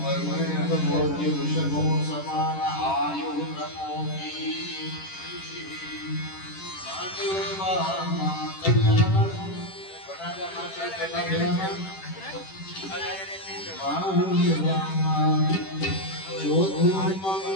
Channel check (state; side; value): late; right; 10 ms